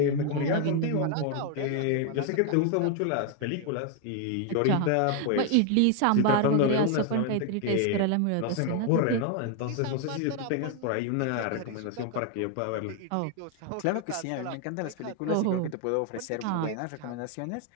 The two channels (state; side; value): different; both; correlation 0.00